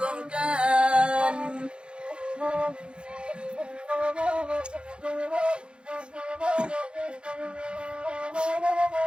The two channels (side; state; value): left; late; 0.054 ms